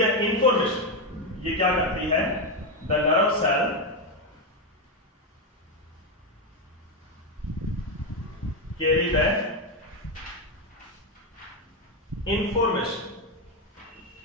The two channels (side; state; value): both; normal; correlation 0.07